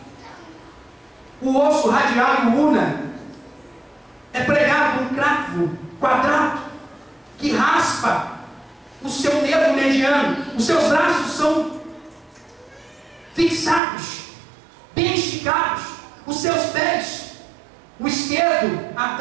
o osso radial e o una é pregado um cravo quadrado que raspa o seu nervo mediano. Os seus braços são fixados, bem esticados. Os seus pés, o esquerdo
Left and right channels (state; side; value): drops out; left; at 13.8 s